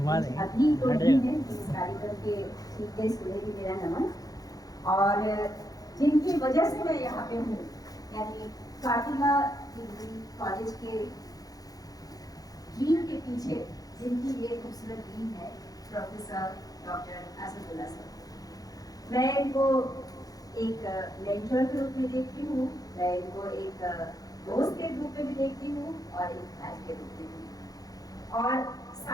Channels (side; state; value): right; late; 0.18 ms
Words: अभी तो नहीं है इस कार्यक्रम के सीधे सुने भी मेरा नमन, और जिनकी वजह से मैं यहाँ पे हूँ, यानी फातिमा डिग्री कॉलेज के ड्रीम के पीछे जिनकी ये खूबसूरत ड्रीम है, प्रोफेसर डॉक्टर असदुल्ला सर। मैं इनको एक मेंटर के रूप में देखती हूँ, मैं इनको एक दोस्त के रूप में भी देखती हूँ और एक भाई के रूप में भी। और